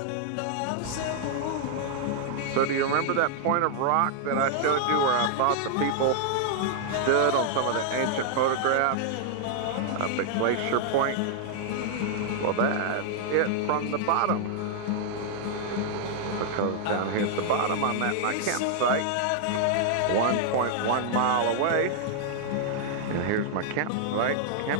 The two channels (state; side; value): different; both; correlation -0.01